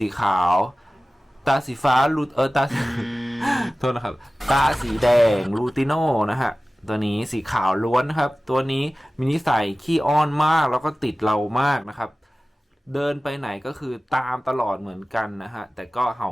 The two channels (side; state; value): both; normal; correlation 0.97